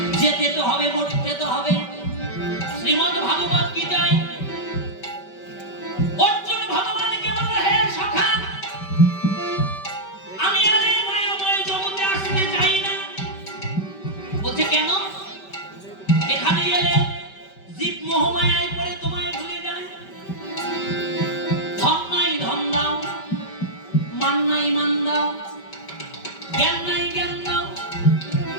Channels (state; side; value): late; right; 5.2 ms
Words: যেতে তো হবে, মরতে তো হবে। শ্রীমদ্ ভাগবত গীতায় অর্জুন ভগবানকে বলল হে সখা আমি আর এই মায়াময় জগতে আসতে চাই না। বলছে কেন? এখানে এলে জীব মোহমায়ায় পড়ে তোমায় ভুলে যায়। ধন নাই ধন দাও, মান নাই মান দাও, জ্ঞান নাই জ্ঞান দাও,